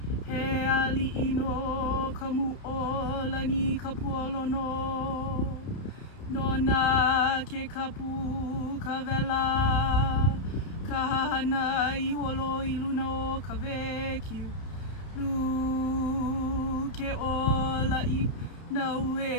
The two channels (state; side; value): late; right; 32 ms